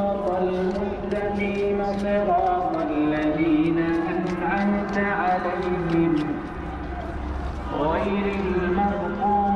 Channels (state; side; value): identical; both; correlation 1.00